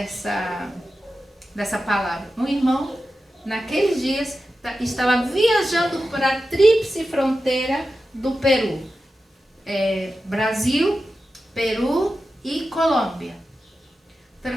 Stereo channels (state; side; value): normal; both; correlation 0.92